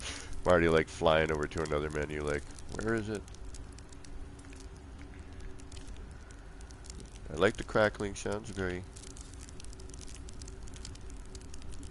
already like flying over to another menu, like, where is it? I like the crackling, sounds very...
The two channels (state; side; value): identical; both; correlation 1.00